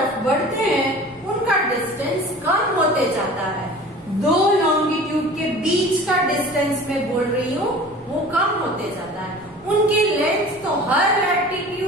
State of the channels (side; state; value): both; normal; correlation 0.41